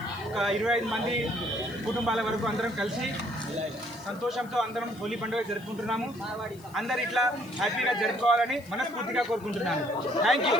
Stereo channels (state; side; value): noise; left; hiss, 24 dB below the sound